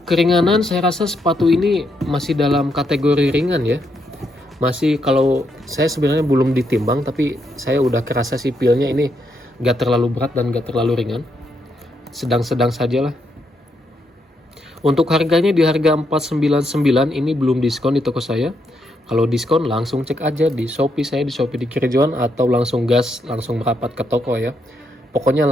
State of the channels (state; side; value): normal; both; correlation 0.78